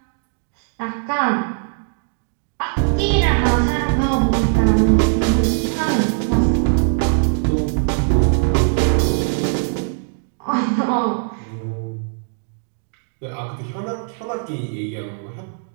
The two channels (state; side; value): silent; left; 66 dB below the other